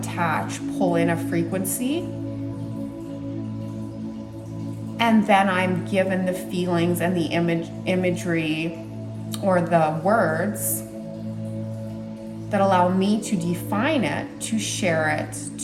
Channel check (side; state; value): both; identical; correlation 1.00